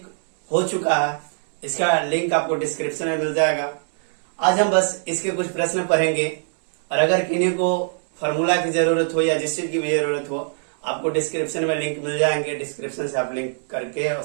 हो चुका है। इसका लिंक आपको डिस्क्रिप्शन में मिल जाएगा। आज हम बस इसके कुछ प्रश्न पढ़ेंगे, और अगर किन्हीं को फॉर्मूला की जरूरत हो या जिस चीज की भी जरूरत हो, आपको डिस्क्रिप्शन में लिंक मिल जाएंगे। डिस्क्रिप्शन से आप लिंक करके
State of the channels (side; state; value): left; silent; digital silence